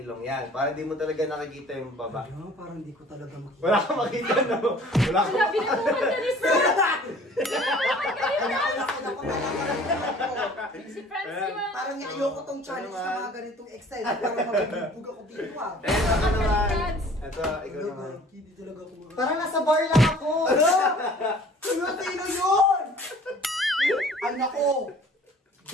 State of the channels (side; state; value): both; normal; correlation 0.50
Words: Yan. Para di mo talaga nakikita yung baba. Ano, parang hindi ko talaga makita. Wala kang makita, no? Wala kang Wala, binubukan ka ni Fran! Si Franz yung... Parang ayoko tong challenge na mga ganitong excited. Parang magbibug ako dito ah. Eh, ako naman. Ito, ikaw naman. Hindi talaga ako makita. Parang nasa bar lang ako. Sino yun? Ay nako.